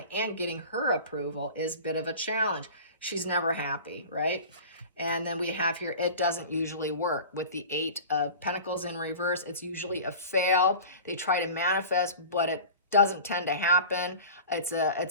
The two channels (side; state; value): both; inverted; correlation -0.37